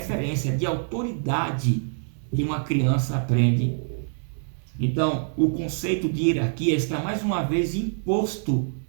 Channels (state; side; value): silent; left; 62 dB below the other